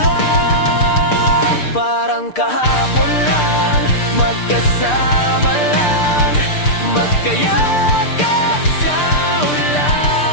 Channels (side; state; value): right; late; 6.7 ms